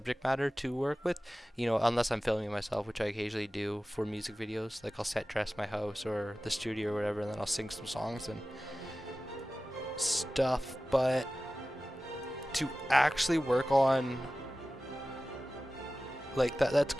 matter to work with, you know, unless I'm filming myself, which I occasionally do for music videos. Like, I'll set dress my house or the studio or whatever, and then I'll sing some songs and stuff. But to actually work on like that's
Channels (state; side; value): normal; both; correlation 0.96